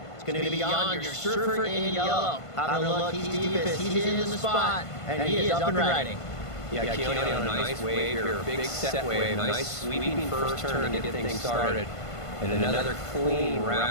It's going to be Jan, your surfer in yellow. Having a look, he's deepest. He's in the spot, and he is up and riding. Yeah, Keone on a nice wave here, big set wave, nice sweeping first turn to get things started. And another clean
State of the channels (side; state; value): right; late; 1.5 ms